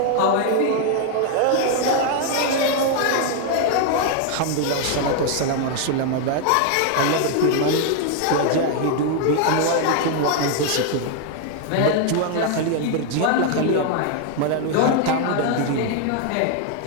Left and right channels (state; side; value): different; both; correlation 0.00